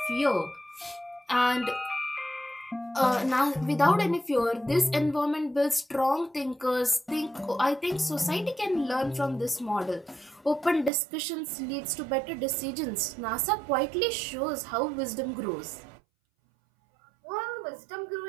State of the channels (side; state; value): left; drops out; at 10.9 s